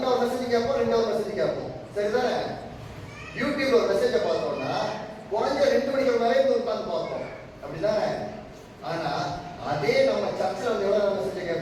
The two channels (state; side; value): identical; both; correlation 1.00